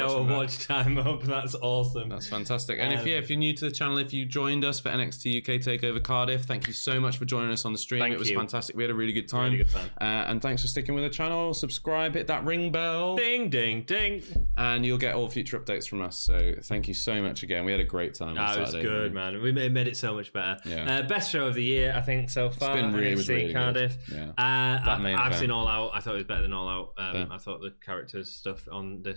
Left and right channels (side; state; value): both; inverted; correlation -1.00